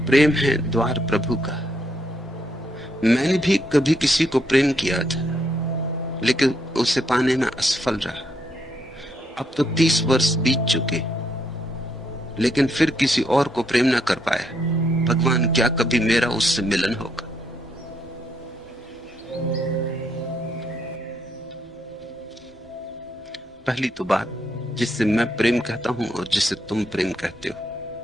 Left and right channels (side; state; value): both; normal; correlation 0.75